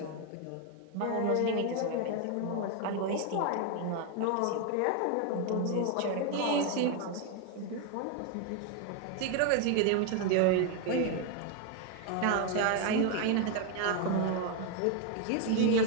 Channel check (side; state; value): both; different; correlation 0.01